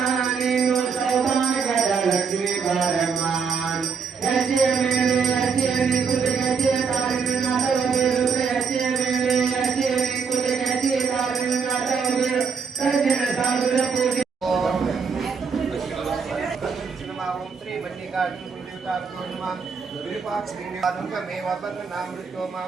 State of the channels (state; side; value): quieter; left; 5.7 dB